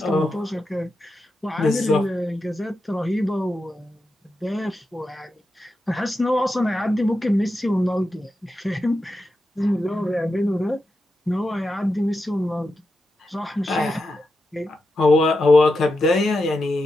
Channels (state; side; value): normal; both; correlation 0.88